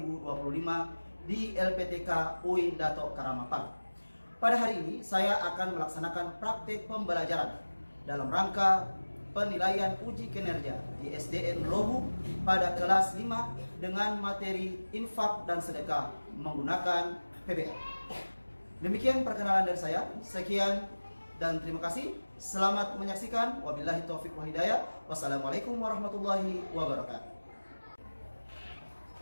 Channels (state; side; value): inverted; both; correlation -1.00